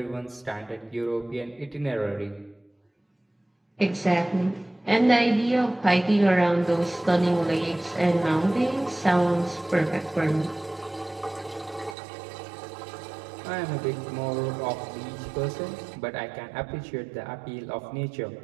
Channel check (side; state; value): left; drops out; at 12.0 s